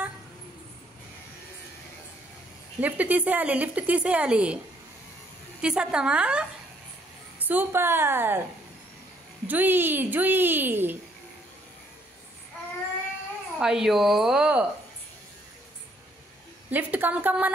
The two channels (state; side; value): normal; both; correlation 0.67